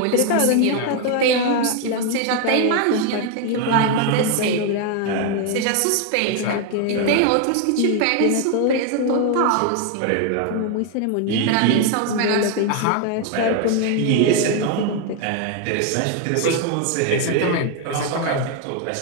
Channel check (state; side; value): different; both; correlation 0.01